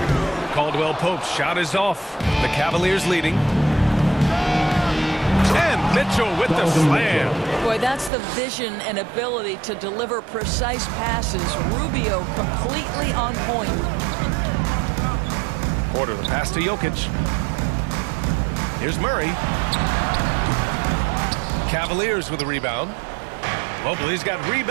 Caldwell Pope's shot is off. The Cavaliers leading. And Mitchell with the slam. Boy, that's the vision and ability to deliver precise passes. Rubio completely on point. Porter, the pass to Jokic. Here's Murray. Cavaliers with a rebound. Mobley's got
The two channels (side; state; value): left; drops out; at 8.1 s